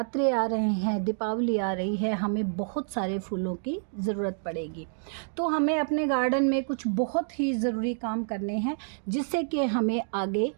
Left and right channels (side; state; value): left; silent; digital silence